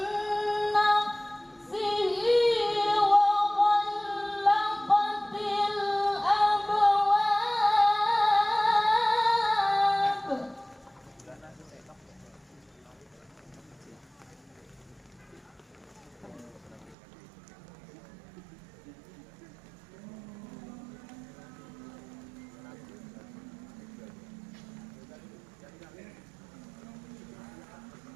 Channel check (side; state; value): left; drops out; at 16.9 s